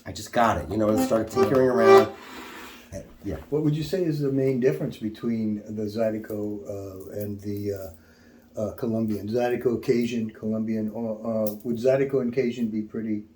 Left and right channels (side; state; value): both; identical; correlation 1.00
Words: I just got it, and started tinkering around. Yeah. What would you say is the main difference between the Zydeco and the Colombian? Zydeco, Cajun, Colombian, or would Zydeco and Cajun be pretty